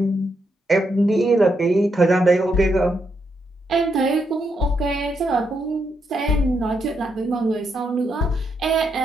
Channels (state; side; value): normal; both; correlation 0.80